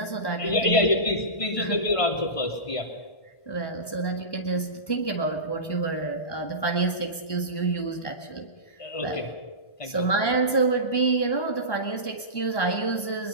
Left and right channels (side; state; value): right; late; 1.2 ms